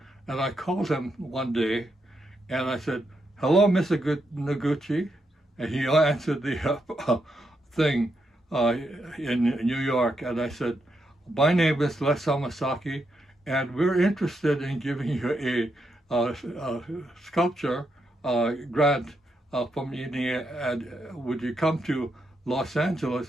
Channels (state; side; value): normal; both; correlation 0.82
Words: and I called him one day, and I said, hello, Mr. Noguchi, and he answered the thing in New York, and I said, my name is Les Hamasaki, and we're interested in giving you a sculpture grant from India, and would you come to Los